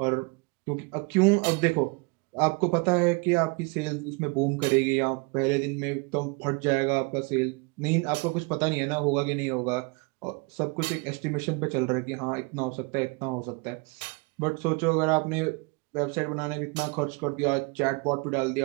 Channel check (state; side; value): quieter; left; 29.8 dB